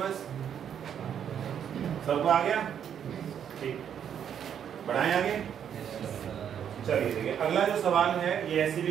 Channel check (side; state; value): left; quieter; 8.7 dB